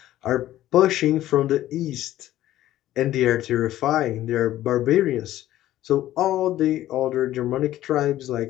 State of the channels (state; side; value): quieter; right; 13.9 dB